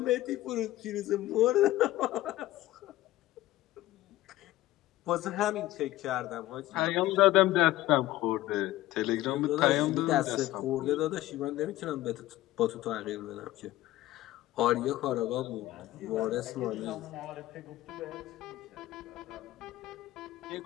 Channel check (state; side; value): quieter; right; 16.1 dB